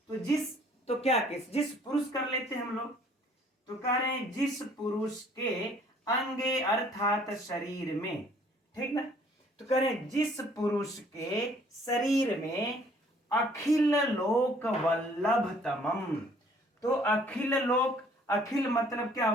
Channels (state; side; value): normal; both; correlation 0.59